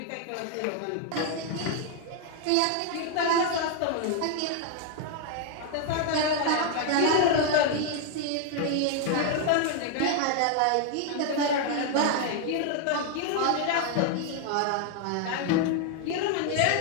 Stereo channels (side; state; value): both; different; correlation 0.00